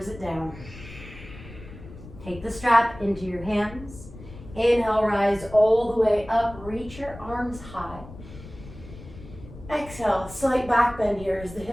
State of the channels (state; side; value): noise; left; rumble, 16 dB below the sound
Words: it down. Take the strap into your hands. Inhale, rise all the way up, reach your arms high. Exhale, slight back bend here as the